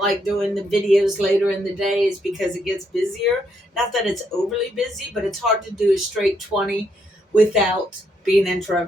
like doing the videos later in the day, is because it gets busier. Not that it's overly busy, but it's hard to do a straight 20 without being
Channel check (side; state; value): both; normal; correlation 0.75